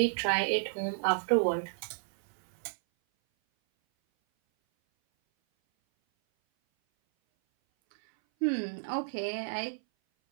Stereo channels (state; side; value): silent; left; 57 dB below the other